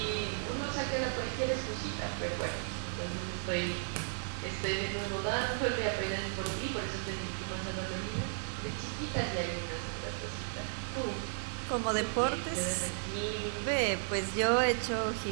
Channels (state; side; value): silent; left; digital silence